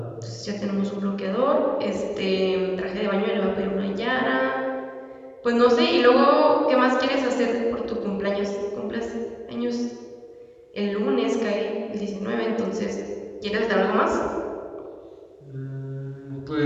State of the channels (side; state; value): both; identical; correlation 1.00